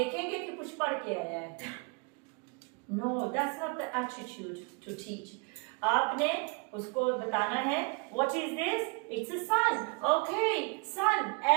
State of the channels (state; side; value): quieter; left; 33.8 dB